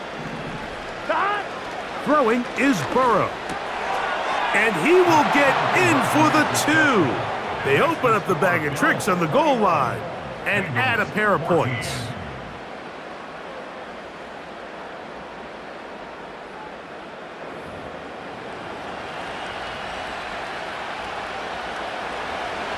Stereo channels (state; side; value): identical; both; correlation 1.00